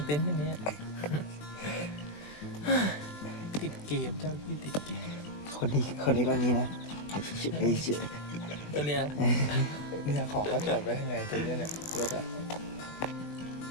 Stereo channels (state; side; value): late; right; 20 ms